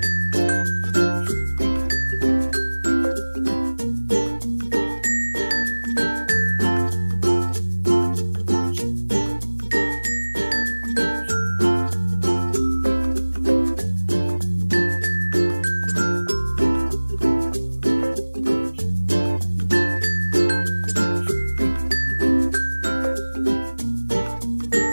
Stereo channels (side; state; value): both; inverted; correlation -1.00